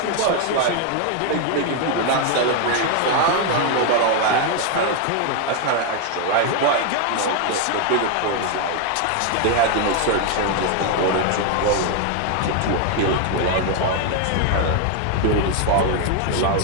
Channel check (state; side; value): different; both; correlation 0.01